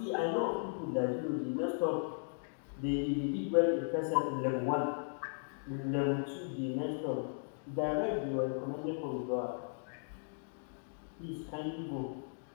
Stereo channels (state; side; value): silent; right; digital silence